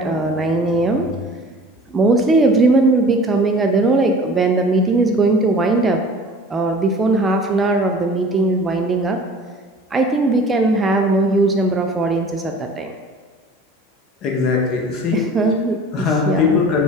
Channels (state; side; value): normal; both; correlation 0.45